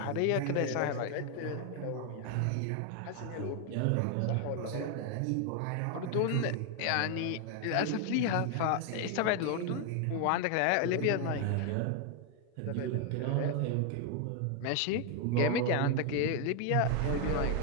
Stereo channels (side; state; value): both; different; correlation 0.00